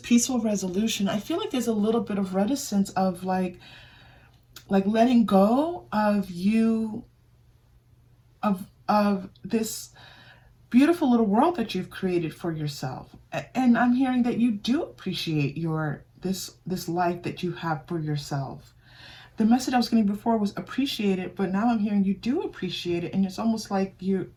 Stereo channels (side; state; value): both; identical; correlation 1.00